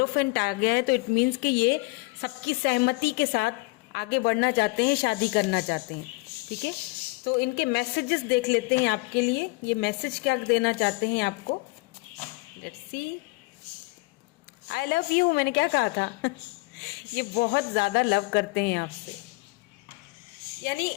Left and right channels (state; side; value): quieter; right; 25.2 dB